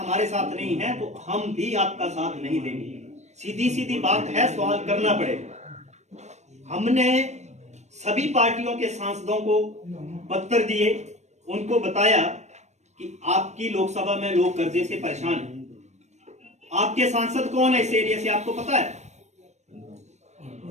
साथ नहीं हैं तो हम भी आपका साथ नहीं देंगे। सीधी सीधी बात है, सवाल करना पड़ेगा। हमने सभी पार्टियों के सांसदों को पत्र दिए, उनको बताया कि आपकी लोकसभा में लोग कर्जे से परेशान हैं। आपके सांसद कौन है इस एरिया से, आपको पता है?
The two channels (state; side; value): late; left; 0.33 ms